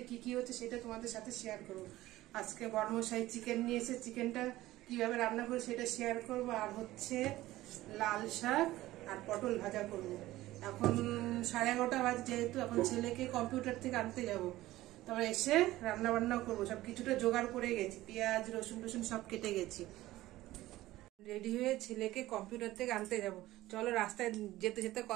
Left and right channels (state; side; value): quieter; left; 16.5 dB